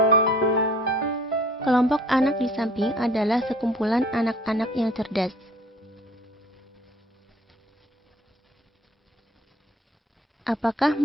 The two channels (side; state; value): both; normal; correlation 0.52